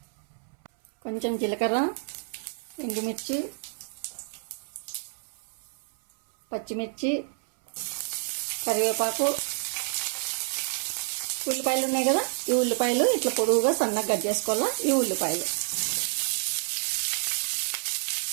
కొంచెం జీలకర్ర, ఎండుమిర్చి, పచ్చిమిర్చి, కరివేపాకు, ఉల్లిపాయలు ఉన్నాయి కదా, ఈ ఉల్లిపాయలు ఇట్లా పొడుగుగా సన్నగా కట్ చేసుకోవాలా. ఈ ఉల్లిపాయలు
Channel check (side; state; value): left; silent; 59 dB below the other